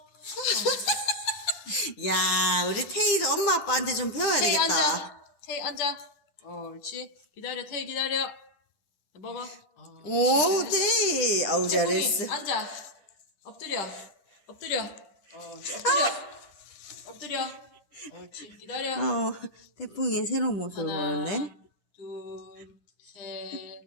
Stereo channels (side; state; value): right; late; 10 ms